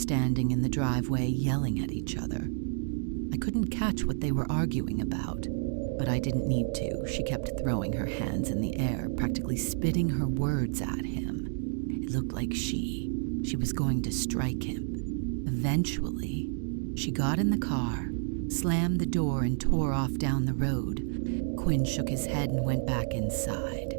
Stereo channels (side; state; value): left; silent; digital silence